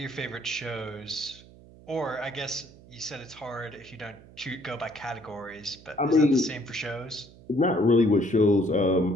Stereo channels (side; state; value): right; noise; hum, 22 dB below the sound